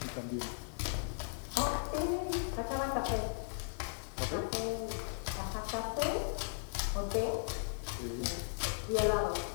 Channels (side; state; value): right; silent; 53 dB below the other